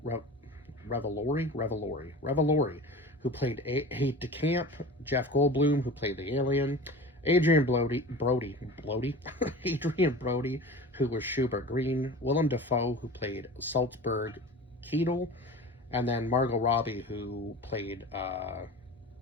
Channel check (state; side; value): normal; both; correlation 0.36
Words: Revolori, who played Aide de Camp, Jeff Goldblum, who played the alien, Adrian Brody, Adrian Brody, who was Schubert Green, Willem Dafoe, who played Salzburg Keetle, and then Margot Robbie, who played